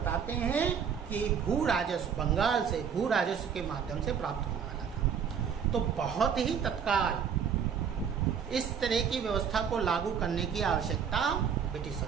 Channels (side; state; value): left; quieter; 7.3 dB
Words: हैं कि भू राजस्व, बंगाल से भू राजस्व के माध्यम से प्राप्त होने वाला था। तो बहुत ही तत्काल इस तरह की व्यवस्था को लागू करने की आवश्यकता ब्रिटिश